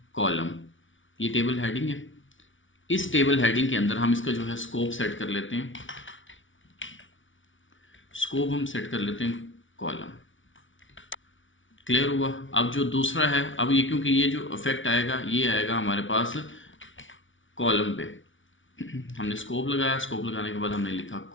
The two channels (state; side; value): late; right; 0.56 ms